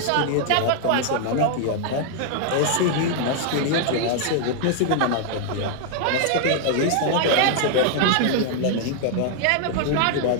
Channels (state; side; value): different; both; correlation 0.00